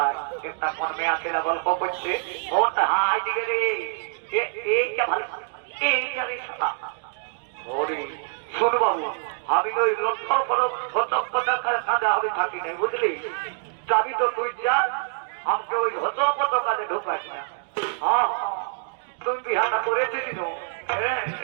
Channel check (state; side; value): silent; left; digital silence